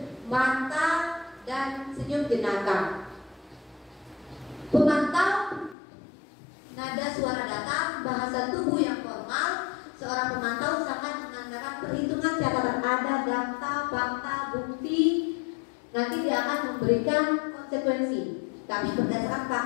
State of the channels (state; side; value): drops out; right; at 5.8 s